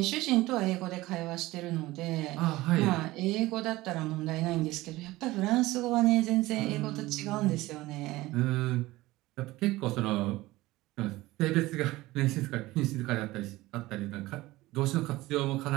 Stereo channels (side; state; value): left; quieter; 18.6 dB